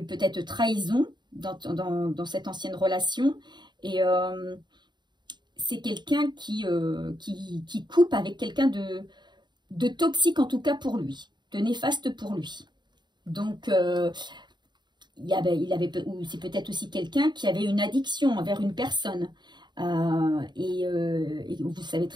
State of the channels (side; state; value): left; late; 0.21 ms